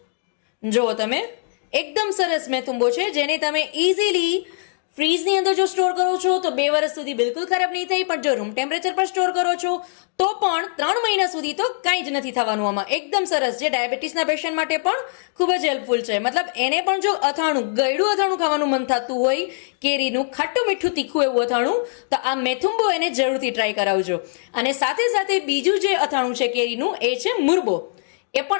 જુઓ તમે, એકદમ સરસ મેથુંબો છે જેને તમે ઇઝીલી ફ્રીજની અંદર જો સ્ટોર કરો છો તો 2 વર્ષ સુધી બિલકુલ ખરાબ નહીં થાય, પણ જો રૂમ ટેમ્પરેચર પર સ્ટોર કરો છો તો પણ 3 મહિના સુધી તો કાંઈ જ નથી થવાનું. આમાં એકદમ સરસ, જે ડાયાબિટીસના પેશન્ટ માટે પણ ખૂબ જ હેલ્પફુલ છે. મતલબ એને પણ જો અથાણું, ગળ્યું અથાણું ખાવાનું મન થતું હોય, કેરીનું ખાટું મીઠું તીખું એવું અથાણું, તો આ મેથુંબો એને જરૂરથી ટ્રાય કરાવજો. અને સાથે સાથે બીજું જે અથાણું છે કેરીનું એ છે મુરબો. એ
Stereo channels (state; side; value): silent; right; digital silence